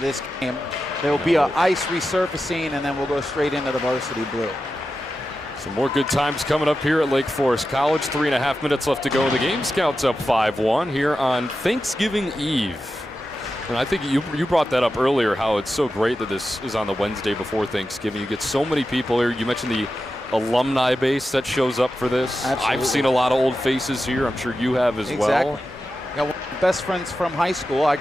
game. There will be an ice resurfacing, and then we'll go straight into the varsity blue. Some more good times coming up here at Lake Forest College. 3.5 minutes left to go in the game. Scouts up 5-1 here on Thanksgiving Eve. And I think you brought that up earlier, how it's so great that this is on the Wednesday before Thanksgiving. You get so many people here. You mentioned the alumni base that shows up for this. Absolutely. I've seen a lot of old faces here. I'm sure you have as well. Got one of my best friends from high school. I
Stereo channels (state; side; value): normal; both; correlation 0.91